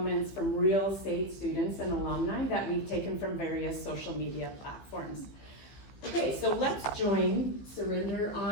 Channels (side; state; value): right; late; 15 ms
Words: from real SAIT students and alumni that we've taken from various social media platforms. Okay, so let's join Surinder